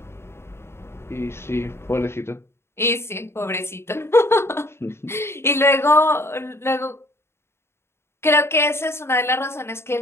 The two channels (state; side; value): late; right; 0.12 ms